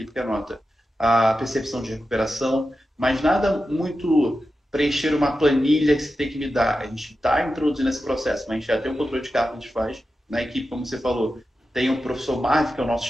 que anota a percepção de recuperação, mas nada muito preencher uma planilha que você tem que me dar. A gente está introduzindo esse processo, mas a gente já tem um controle de carga que a gente faz. Na equipe, como você falou, tem o professor Marv, que é o nosso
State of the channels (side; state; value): both; normal; correlation 0.91